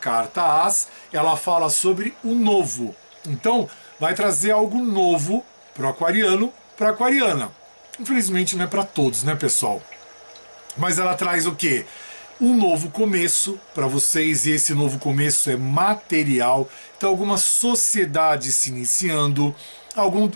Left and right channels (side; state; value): both; inverted; correlation -1.00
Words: As, ela fala sobre o novo. Então, vai trazer algo novo para o aquariano, para a aquariana. Infelizmente não é para todos, né, pessoal? Mas ela traz o quê? Um novo começo para vocês, e esse novo começo é material. Então, alguma sociedade se iniciando, alguma